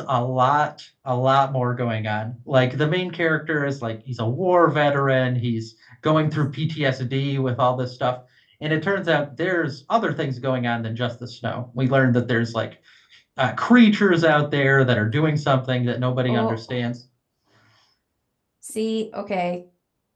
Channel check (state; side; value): identical; both; correlation 1.00